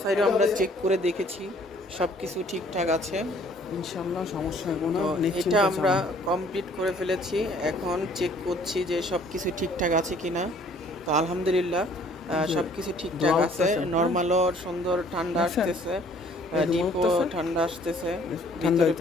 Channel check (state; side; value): normal; both; correlation 0.58